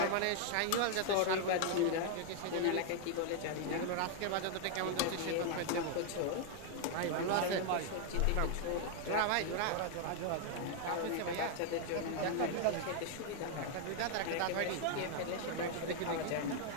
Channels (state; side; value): different; both; correlation 0.00